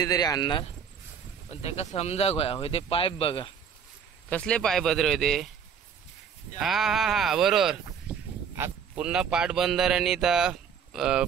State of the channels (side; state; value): left; quieter; 7.3 dB